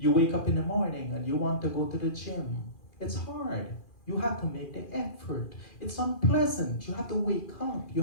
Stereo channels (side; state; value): right; late; 2.4 ms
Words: wake up in the morning and you want to go to the gym. It's hard. You have to make the effort. It's unpleasant. You have to wake up. You